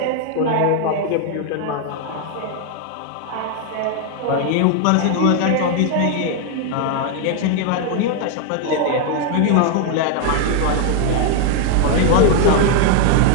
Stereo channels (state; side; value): different; both; correlation 0.00